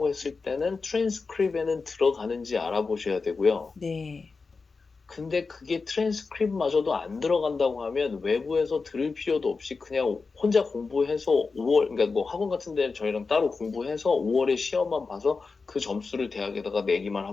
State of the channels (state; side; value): quieter; right; 4.4 dB